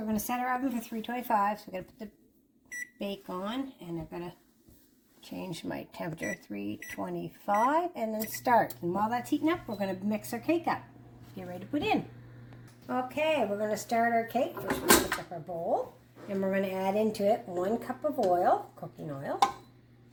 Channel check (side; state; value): both; identical; correlation 1.00